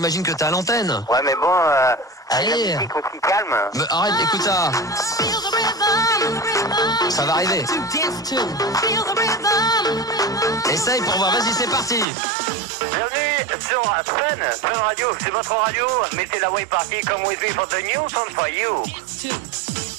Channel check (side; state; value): left; drops out; at 12.1 s